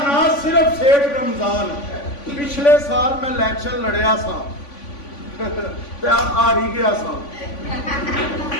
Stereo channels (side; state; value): right; late; 3.5 ms